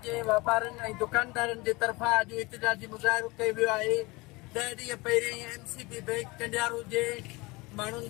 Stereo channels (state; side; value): quieter; right; 23.7 dB